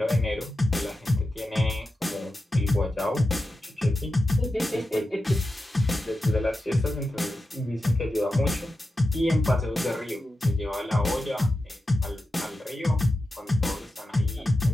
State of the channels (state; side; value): normal; both; correlation 0.91